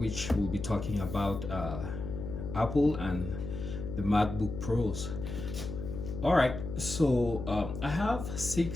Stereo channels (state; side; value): noise; left; hum, 7 dB below the sound